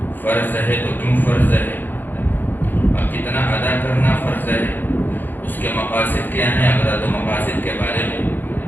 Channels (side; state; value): right; late; 0.089 ms